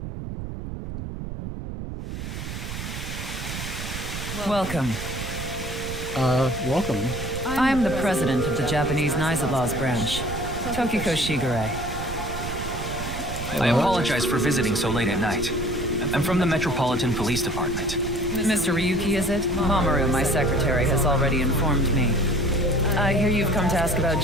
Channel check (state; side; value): noise; right; rumble, 7 dB below the sound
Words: Welcome. Welcome. I'm the president of the Japanese Nizalas branch, Tokiko Shigure. I apologize for visiting so late at night. I'm from the Metropolitan Police Department. Mr. Ryuki, is it? Mamoru, my secretary, has already informed me. I hear you've come to ask about